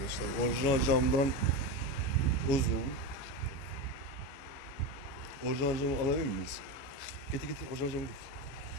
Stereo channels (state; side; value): late; right; 15 ms